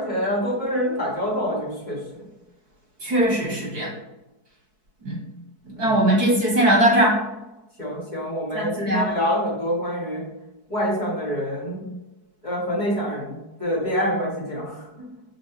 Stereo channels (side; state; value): left; late; 4.6 ms